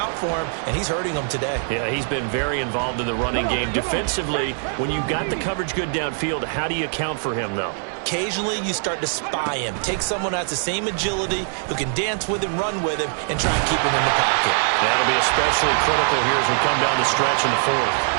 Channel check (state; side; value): silent; left; 64 dB below the other